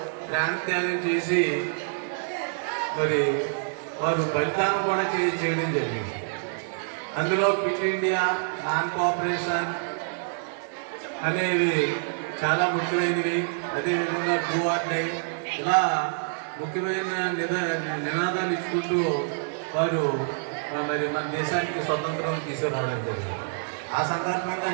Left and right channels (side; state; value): left; silent; digital silence